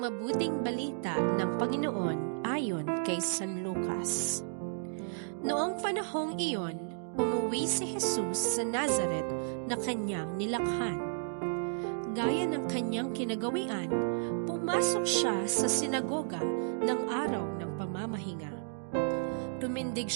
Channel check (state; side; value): silent; left; digital silence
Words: balita ng Panginoon ayon kay San Lucas. Noong panahong iyon, umuwi si Jesus sa Nazaret na kanyang nilakhan. Gaya ng kanyang kinagawian, pumasok siya sa sinagoga ng araw ng pamamahinga. Tumindig